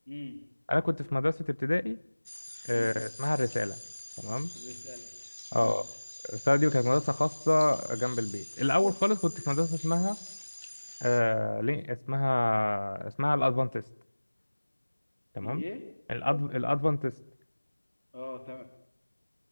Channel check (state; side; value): inverted; both; correlation -1.00